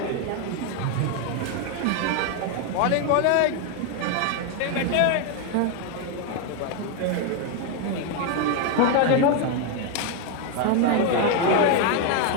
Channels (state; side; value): different; both; correlation 0.01